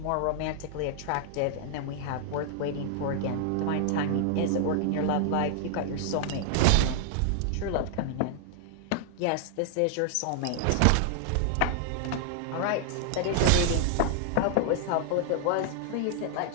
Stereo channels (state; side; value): different; both; correlation 0.00